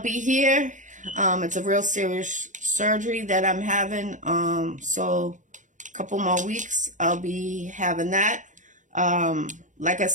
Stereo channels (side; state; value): left; late; 0.37 ms